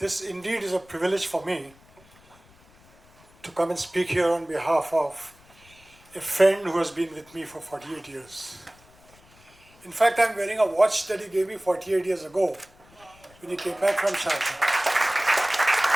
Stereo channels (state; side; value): noise; left; rumble, 28 dB below the sound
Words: indeed is a privilege for me to come and speak here on behalf of a friend who has been with me for 48 years. In fact, I'm wearing a watch that he gave me 48 years ago when he came back from Sharjah.